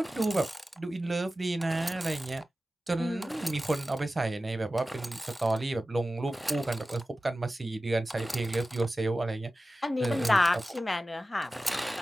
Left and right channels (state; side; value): normal; both; correlation 0.95